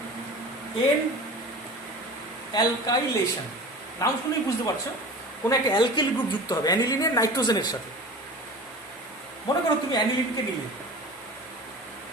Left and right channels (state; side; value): normal; both; correlation 0.36